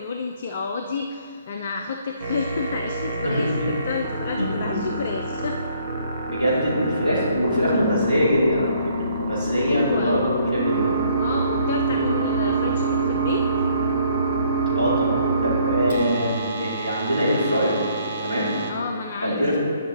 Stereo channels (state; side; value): inverted; both; correlation -0.64